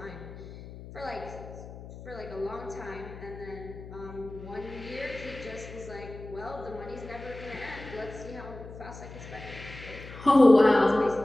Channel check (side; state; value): left; noise; hum, 14 dB below the sound